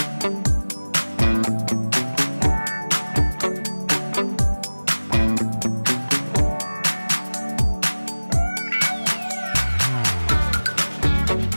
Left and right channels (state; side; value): inverted; both; correlation -1.00